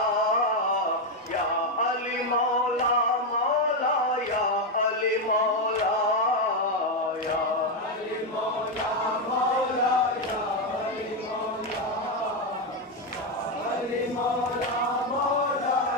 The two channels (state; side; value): normal; both; correlation 0.06